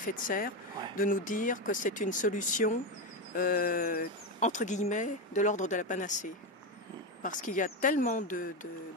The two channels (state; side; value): normal; both; correlation 0.12